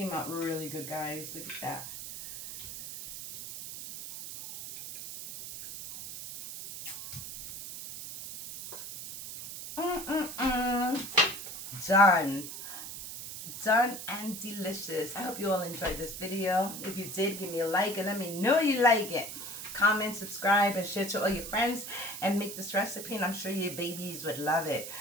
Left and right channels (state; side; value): noise; right; hiss, 9 dB below the sound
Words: out really good, guys. Look at that. Done. Done and delicious. I hope you all enjoyed this video. If you did, give me a like and let me know you like it. Comment, subscribe, and share to all your friends, and make this recipe, and I'm sure your babies would love it.